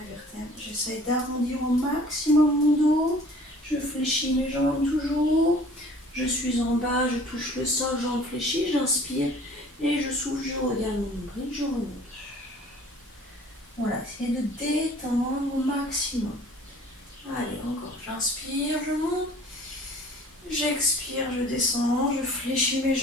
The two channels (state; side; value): normal; both; correlation 0.50